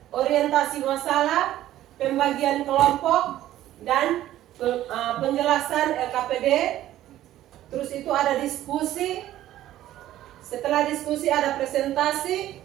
orientasi masalah, pembagian kelompok, dan penjelasan LKPD. Terus itu ada diskusi. Setelah diskusi ada presentasi,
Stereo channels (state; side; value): quieter; left; 13.5 dB